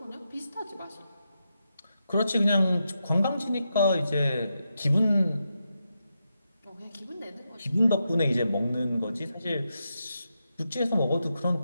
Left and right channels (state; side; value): inverted; both; correlation -0.86